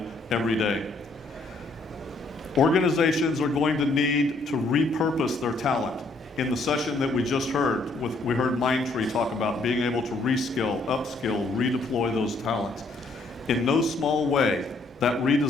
every day. Organizations are going to need to repurpose their talent. In the session that we just heard, we heard Mindtree talk about being able to reskill, upskill, redeploy those talents. In no small way, that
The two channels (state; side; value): quieter; right; 3.1 dB